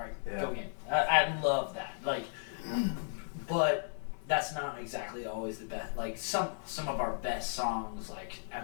go again. I love that, but that's not exactly always the best. Some of our best songs,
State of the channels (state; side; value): silent; right; digital silence